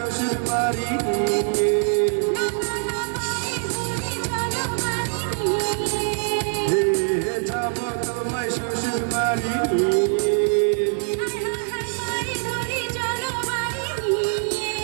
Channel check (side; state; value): left; silent; 56 dB below the other